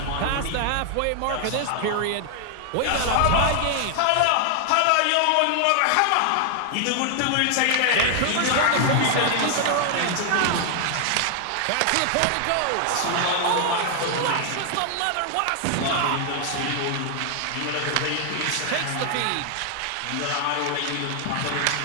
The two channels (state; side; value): different; both; correlation 0.00